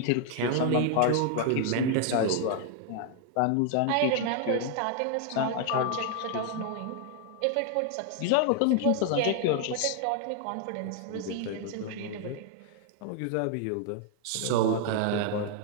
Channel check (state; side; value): different; both; correlation 0.00